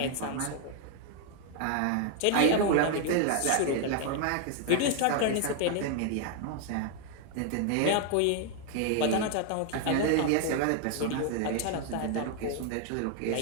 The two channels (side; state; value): both; different; correlation 0.00